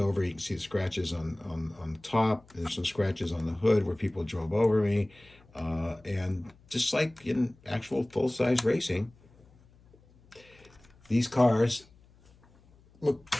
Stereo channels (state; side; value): noise; left; hum, 28 dB below the sound